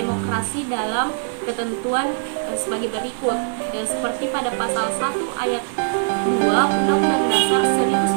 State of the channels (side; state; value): left; silent; digital silence